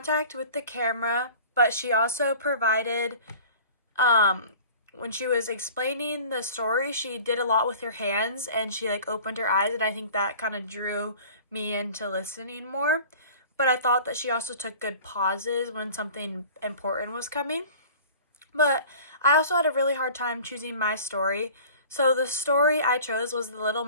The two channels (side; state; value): both; inverted; correlation -0.44